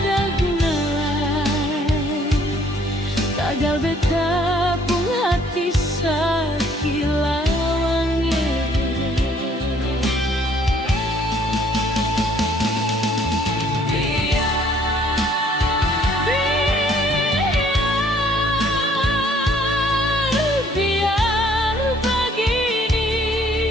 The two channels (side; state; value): both; normal; correlation 0.61